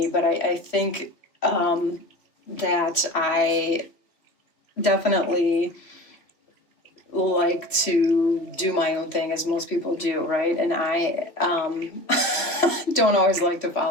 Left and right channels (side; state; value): right; late; 2.8 ms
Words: but I think that I definitely like to do my own thing, as most people do, right? And I don't always like to